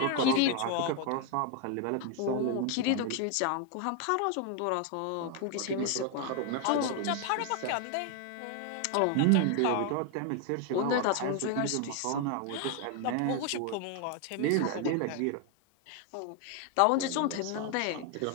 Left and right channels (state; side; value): different; both; correlation 0.01